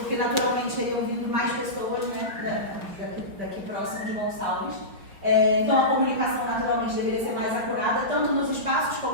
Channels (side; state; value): left; late; 5.5 ms